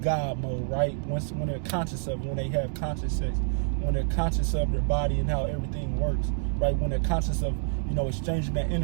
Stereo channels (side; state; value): left; silent; digital silence